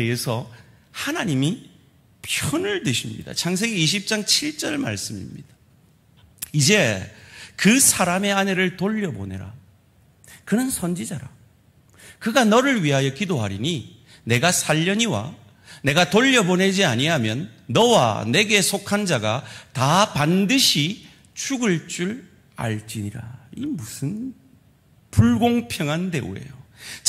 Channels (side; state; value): both; identical; correlation 1.00